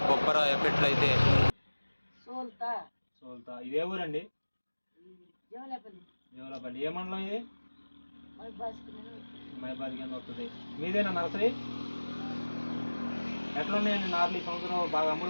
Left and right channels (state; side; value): inverted; both; correlation -1.00